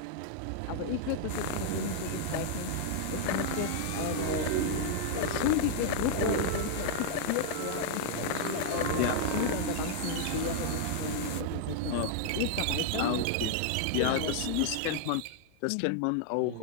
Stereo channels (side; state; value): both; different; correlation -0.01